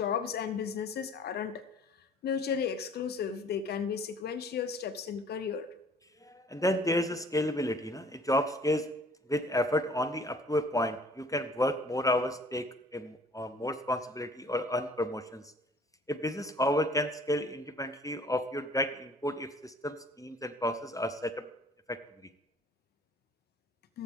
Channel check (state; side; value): normal; both; correlation 0.53